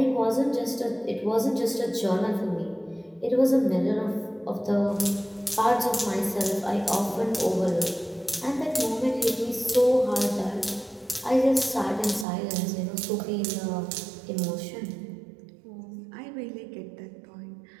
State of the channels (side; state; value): left; drops out; at 12.2 s